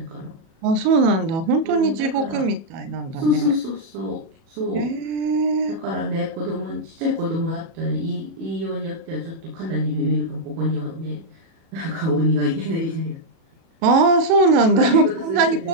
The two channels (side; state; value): left; late; 37 ms